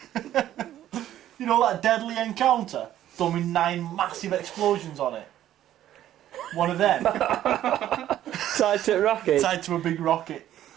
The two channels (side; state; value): left; quieter; 12.3 dB